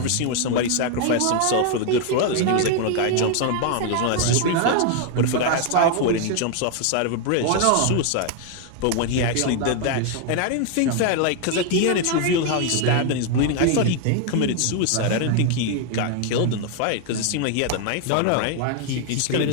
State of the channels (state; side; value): different; both; correlation 0.00